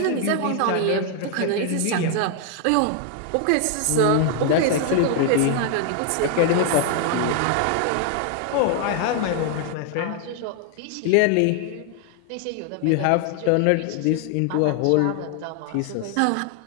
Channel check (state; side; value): different; both; correlation 0.00